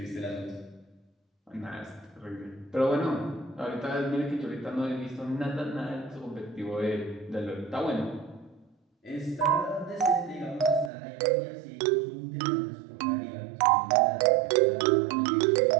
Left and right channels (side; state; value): left; drops out; at 10.9 s